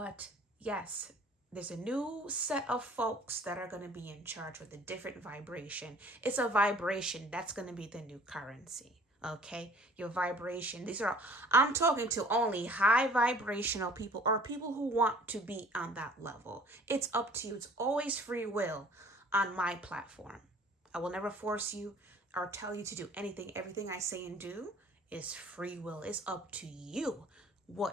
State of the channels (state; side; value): normal; both; correlation 0.51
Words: yes, there's a new set of folks that are going to be in charge with a different vibration. It's a vibration that's going to be the new currency. Okay, your vibration. I'm talking to only high vibrational people or people who want to be on that level. It's up to you. It's always free will on my platform. I will never force you or tell you to do anything. Everything I say and do is free will. It's up to you